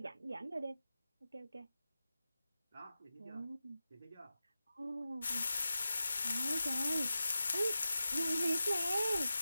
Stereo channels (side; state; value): both; inverted; correlation -0.93